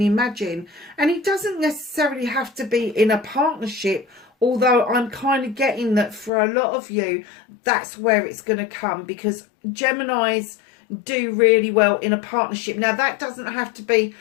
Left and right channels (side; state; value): right; drops out; at 6.3 s